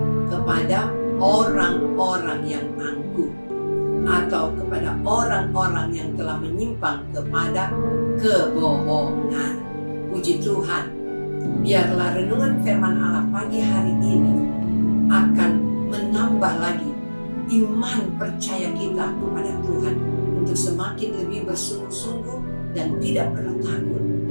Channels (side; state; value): both; inverted; correlation -1.00